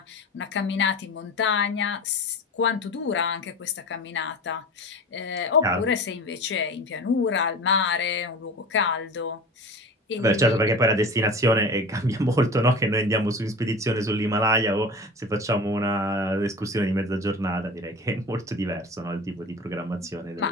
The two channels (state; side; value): normal; both; correlation 0.34